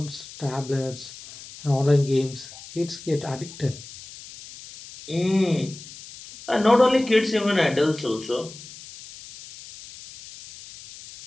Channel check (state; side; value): noise; left; hiss, 16 dB below the sound